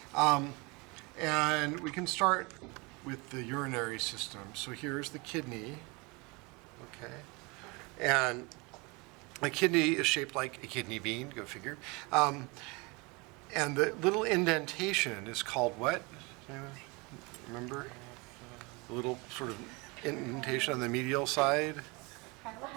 And we can start with the urinary system. So here's the kidney. Okay. And a kidney is shaped like a kidney bean, go figure. And the little indentation is called what? Remember? The little sort of indentation on the medial side?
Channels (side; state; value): left; quieter; 27.3 dB